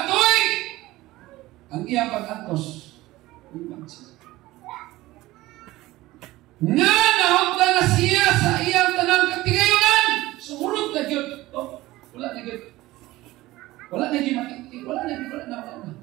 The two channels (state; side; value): quieter; left; 18.0 dB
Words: ang iyang pag-antos. Nga nahugda na siya sa iyang tanang katigayunan. Sumurot na yun. Oh, wala na yun. Wala na yun matitig. Wala na.